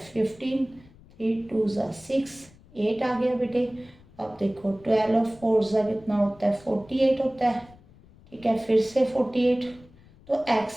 15, 3 2 सा 6, 8 आ गया बेटे। अब देखो 12 4 सा कितना होता है? 48 होता है। ठीक है, फिर से 48। तो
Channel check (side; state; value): left; noise; rumble, 25 dB below the sound